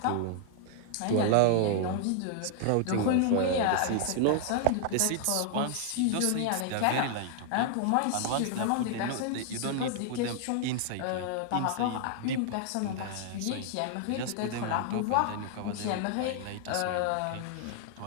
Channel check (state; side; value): different; both; correlation -0.01